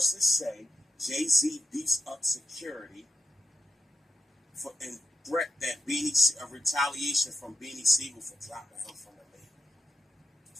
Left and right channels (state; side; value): normal; both; correlation 0.86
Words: say Jay-Z beefs up security and threat that a retaliation from Beanie Siegel for dropping him from the label.